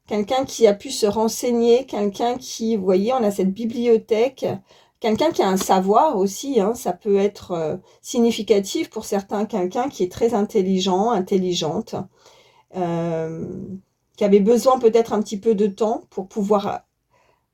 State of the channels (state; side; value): identical; both; correlation 1.00